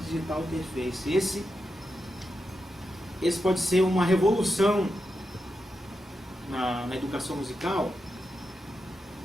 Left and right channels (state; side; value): normal; both; correlation 0.87